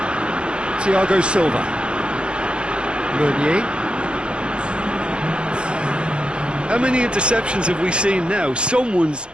Thiago Silva. Meunier. How many interceptions have we seen now? Someone's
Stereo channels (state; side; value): late; left; 0.056 ms